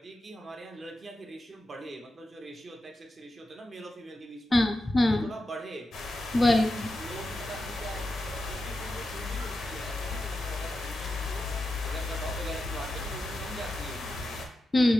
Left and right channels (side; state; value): both; normal; correlation 0.90